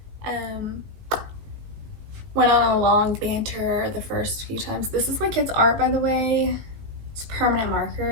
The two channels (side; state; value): left; late; 18 ms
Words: Went on a long banter the first few times. This is my kid's art, by the way. It's permanent